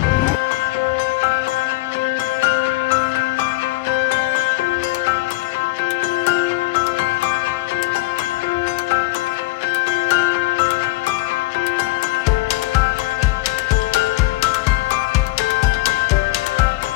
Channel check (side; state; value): right; quieter; 21.4 dB